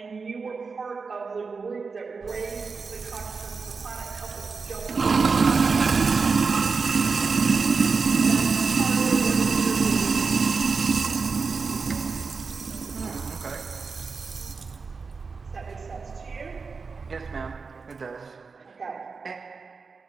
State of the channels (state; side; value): quieter; left; 4.8 dB